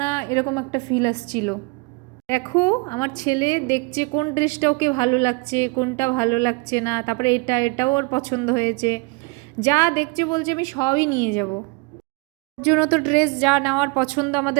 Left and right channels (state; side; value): quieter; left; 28.9 dB